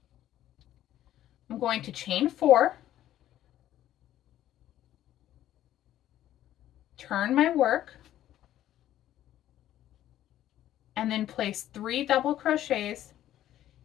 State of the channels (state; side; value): quieter; right; 12.6 dB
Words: I'm going to chain 4, turn my work, and then place 3 double crochets